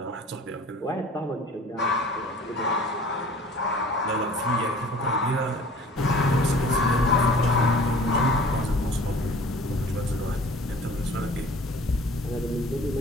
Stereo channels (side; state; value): both; normal; correlation 0.47